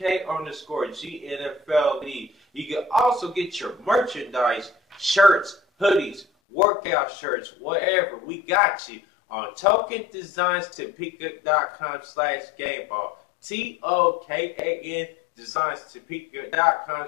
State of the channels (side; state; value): right; drops out; at 6.2 s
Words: You can also get your merchandise, shirts, hoodies, workout shirts, whatever. We got you on TokenDesignsTopeka.com/Gameball. TOKAN